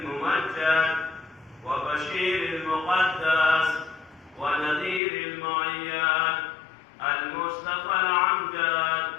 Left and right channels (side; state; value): right; drops out; at 5.0 s